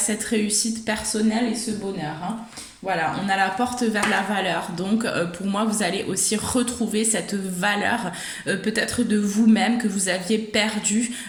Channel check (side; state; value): both; identical; correlation 1.00